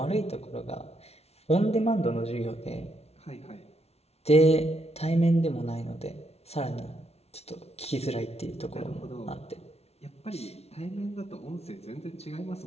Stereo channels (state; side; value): late; right; 0.31 ms